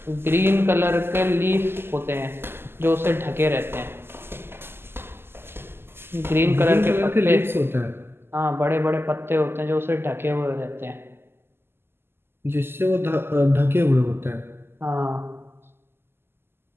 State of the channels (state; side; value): late; left; 0.11 ms